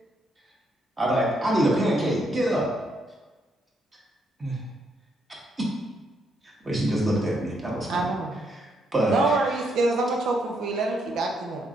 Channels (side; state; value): both; normal; correlation 0.75